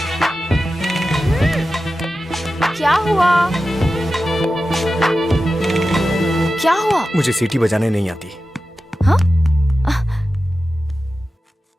क्या हुआ? क्या हुआ? मुझे सीटी बजाने नहीं आती। हाँ?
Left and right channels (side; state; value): both; normal; correlation 0.93